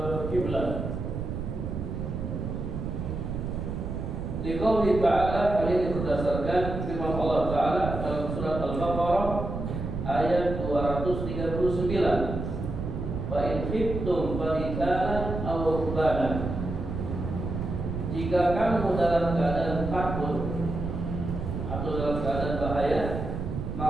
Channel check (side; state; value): right; noise; rumble, 5 dB below the sound